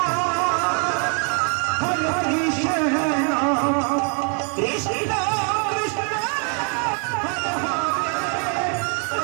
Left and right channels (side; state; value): left; quieter; 39.2 dB